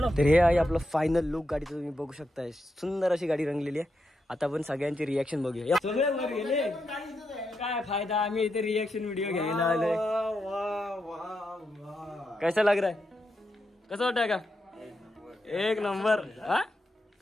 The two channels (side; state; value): both; normal; correlation 0.85